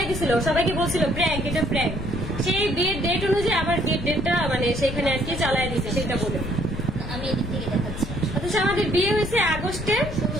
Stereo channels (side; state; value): left; noise; rumble, 7 dB below the sound